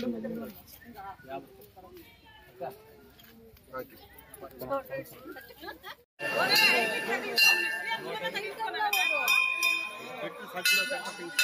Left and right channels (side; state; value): both; identical; correlation 1.00